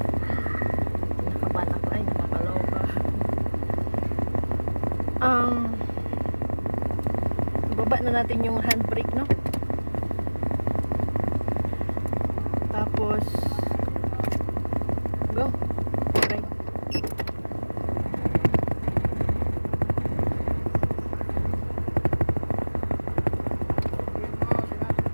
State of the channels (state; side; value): inverted; both; correlation -1.00